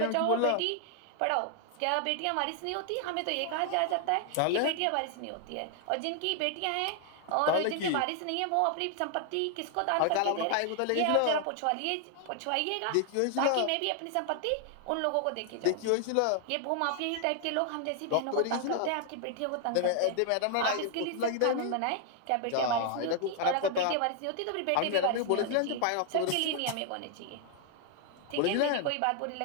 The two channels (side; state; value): both; different; correlation 0.00